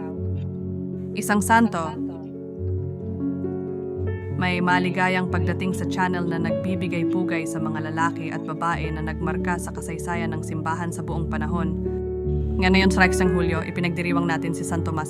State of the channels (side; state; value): both; identical; correlation 1.00